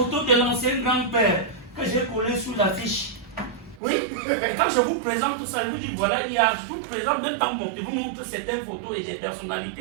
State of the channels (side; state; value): left; drops out; at 3.8 s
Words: de l'ancien grand-père que j'ai collé sous l'affiche. Oui, et quand je vous présente tout ça, je vous dis voilà, il y a tout présent, même par mon, je vous montre certaines photos et des